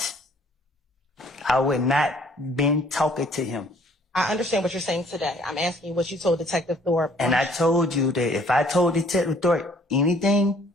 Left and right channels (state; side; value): normal; both; correlation 0.59